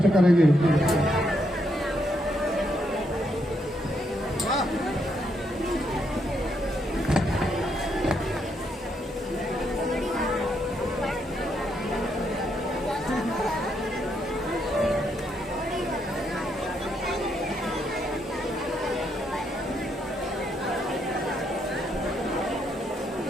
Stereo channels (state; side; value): normal; both; correlation 0.77